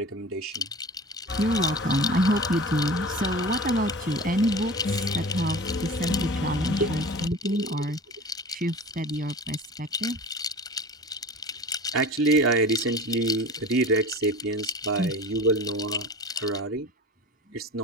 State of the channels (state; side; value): normal; both; correlation 0.36